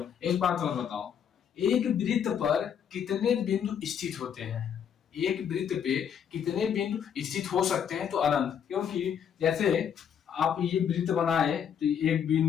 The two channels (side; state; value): right; quieter; 8.2 dB